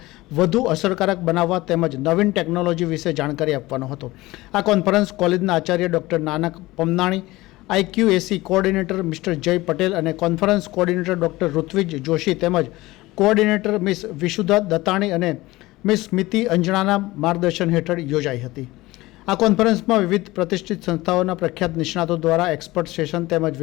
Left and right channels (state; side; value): quieter; right; 19.3 dB